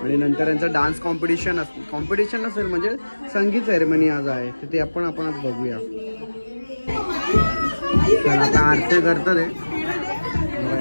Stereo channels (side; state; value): both; inverted; correlation -1.00